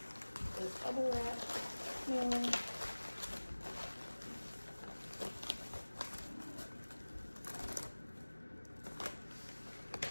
this bubble wrap mailer.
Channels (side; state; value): both; inverted; correlation -1.00